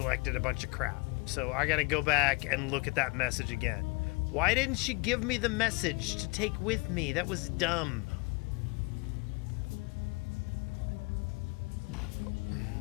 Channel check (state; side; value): quieter; right; 27.6 dB